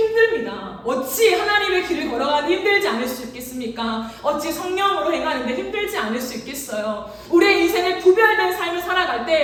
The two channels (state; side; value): identical; both; correlation 1.00